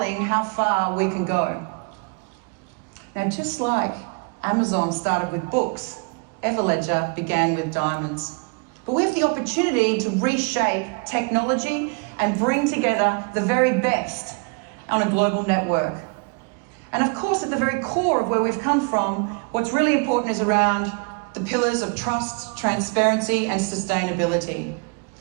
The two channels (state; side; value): quieter; left; 33.0 dB